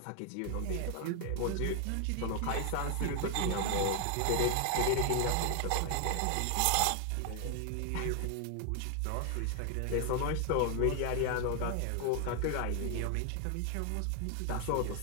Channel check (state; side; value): different; both; correlation 0.00